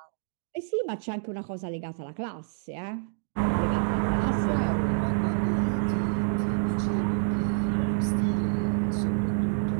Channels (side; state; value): left; silent; digital silence